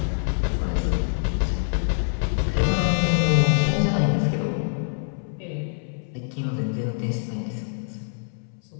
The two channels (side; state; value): right; silent; 62 dB below the other